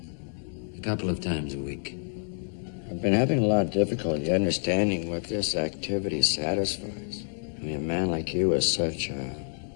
A couple of times a week. I've been having a lot of difficulty understanding what this activity satisfies. I mean, a man like you is such a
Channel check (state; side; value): silent; right; 59 dB below the other